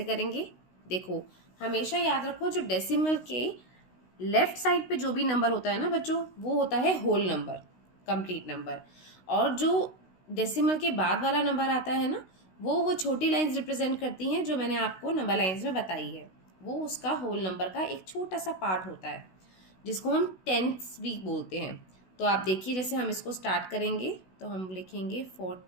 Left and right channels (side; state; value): right; late; 16 ms